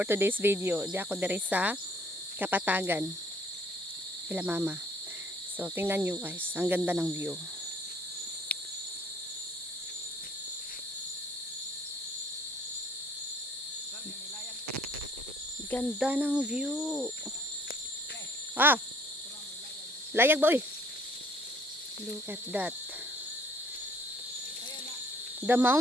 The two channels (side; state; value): both; normal; correlation 0.60